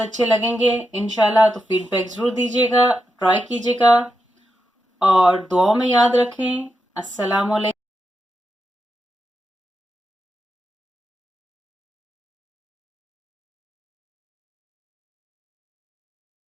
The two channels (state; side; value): normal; both; correlation 0.86